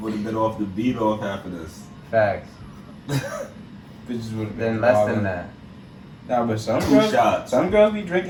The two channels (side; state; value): both; identical; correlation 1.00